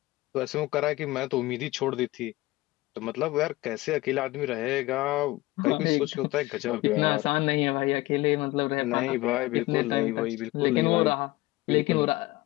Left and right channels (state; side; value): quieter; right; 19.7 dB